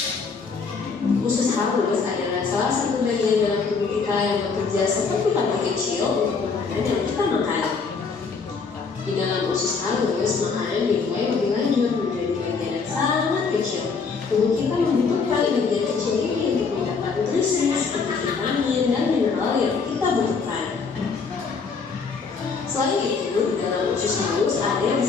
Usus halus adalah salah satu bagian dalam tubuh kita yang bekerja seperti pantai kecil untuk makanan yang kita makan. Di dalam usus halus, makanan dimulai lebih lanjut menjadi bagian yang sangat kecil. Tubuh kita membutuhkan bagian kecil ini untuk mendapat nutrisi seperti vitamin dan mineral yang kita butuhkan. Selain itu, di dalam usus halus ada yang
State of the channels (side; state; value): right; quieter; 5.0 dB